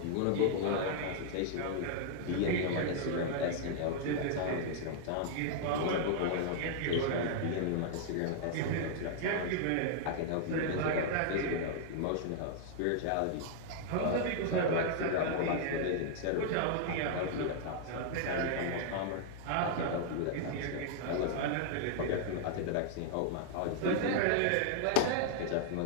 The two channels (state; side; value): different; both; correlation -0.01